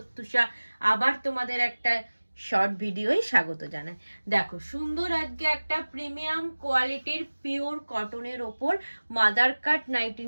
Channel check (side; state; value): both; inverted; correlation -1.00